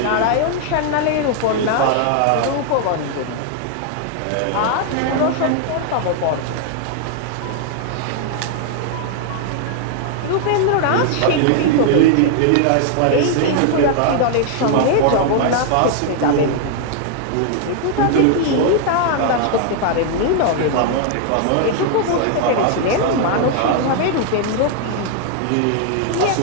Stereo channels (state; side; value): different; both; correlation 0.00